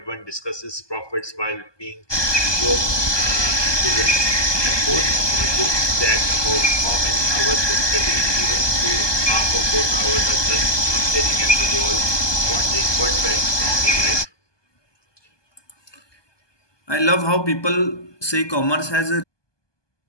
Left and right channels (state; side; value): late; right; 1.2 ms